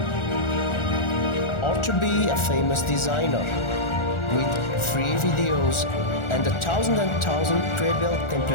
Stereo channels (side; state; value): right; late; 1.4 ms